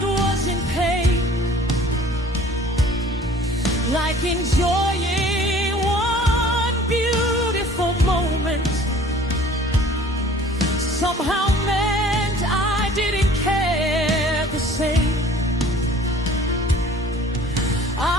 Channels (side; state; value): both; normal; correlation 0.50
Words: was in pain, like enjoying one beautiful moment somehow meant I didn't care the same.